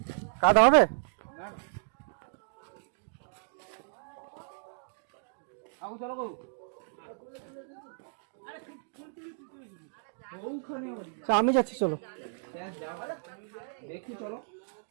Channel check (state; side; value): silent; left; digital silence